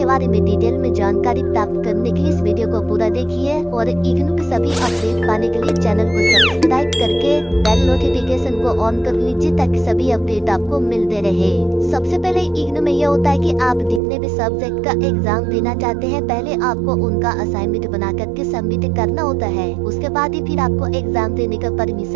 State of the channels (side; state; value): left; drops out; at 14.0 s